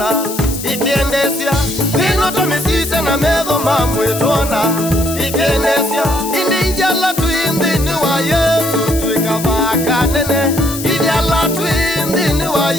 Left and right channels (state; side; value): noise; left; hiss, 9 dB below the sound